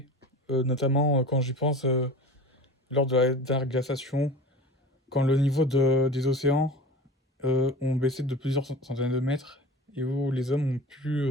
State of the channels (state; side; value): normal; both; correlation 0.37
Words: notamment quand j'y pense, lors de la dernière glaciation, quand le niveau des océans ont baissé de plusieurs centaines de mètres et où les hommes ont pu